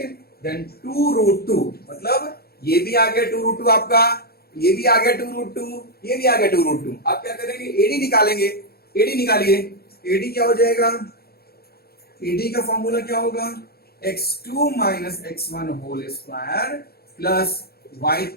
then 2√2, मतलब ये भी आ गया 2√2 आपका, ये भी आ गया 2√2, ये भी आ गया 2√2। अब क्या करेंगे, एडी निकालेंगे। एडी निकालिए। एडी क्या हो जाएगा, एडी का फॉर्मूला क्या होगा, x2 minus x1 whole square plus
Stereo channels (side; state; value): right; late; 0.45 ms